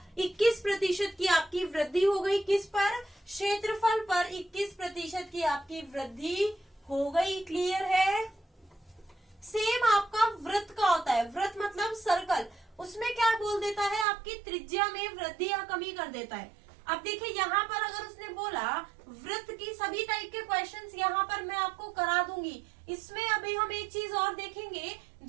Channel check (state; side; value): drops out; left; at 14.1 s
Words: 21% की आपकी वृद्धि हो गई, किस पर, क्षेत्रफल पर 21% की आपकी वृद्धि हो गई। क्लियर है। सेम आपका वृत्त का होता है, वृत्त मतलब सर्कल, उसमें क्या बोल देता है, आपकी त्रिज्या में वृद्धि या कमी कर देता है। अब देखिए यहाँ पर अगर उसने बोला वृत्त की सभी टाइप के क्वेश्चंस यहाँ पर मैं आपको करा दूंगी। इसमें अभी हम एक चीज और देखेंगे,